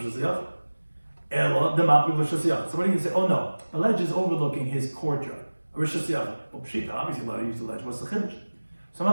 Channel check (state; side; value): inverted; both; correlation -1.00